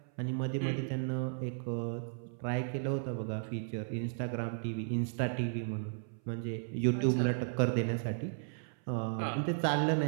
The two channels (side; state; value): left; silent; 55 dB below the other